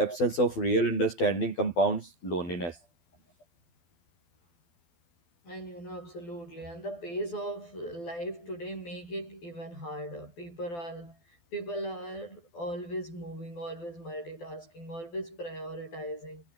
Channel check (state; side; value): late; right; 12 ms